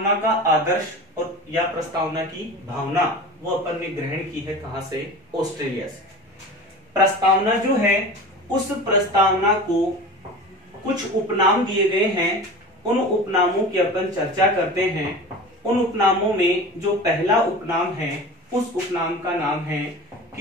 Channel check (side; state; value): both; normal; correlation 0.34